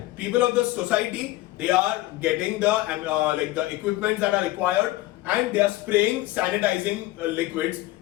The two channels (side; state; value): right; quieter; 17.7 dB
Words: people of the society, they are getting the equipments that are required, and they are spraying sanitizing liquids